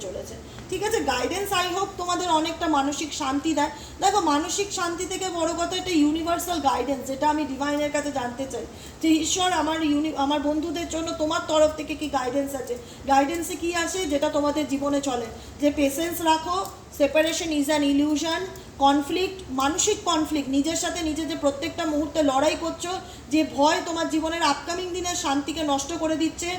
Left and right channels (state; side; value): identical; both; correlation 1.00